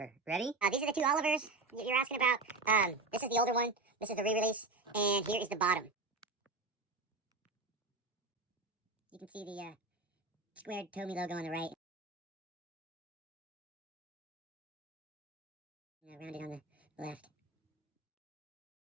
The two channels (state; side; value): quieter; left; 3.4 dB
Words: Ready? These are the two Olivers you're asking about. This is the older one. This is the re-release. And here is the bottom. You can see the squared Tomy logo on the right. And rounded on the left.